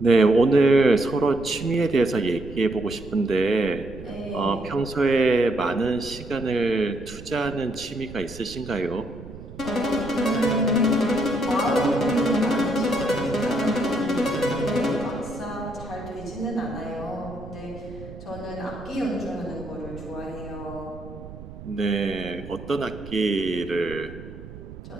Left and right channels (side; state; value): right; noise; rumble, 15 dB below the sound